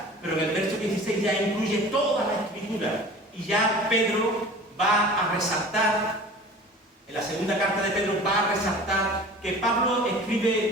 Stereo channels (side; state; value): both; normal; correlation 0.42